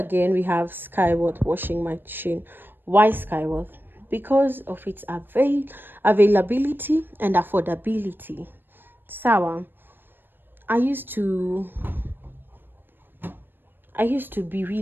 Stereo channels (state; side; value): late; left; 0.096 ms